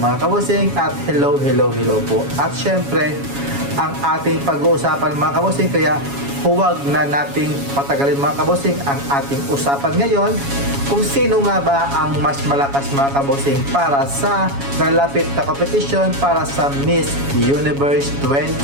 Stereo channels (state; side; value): late; left; 7.2 ms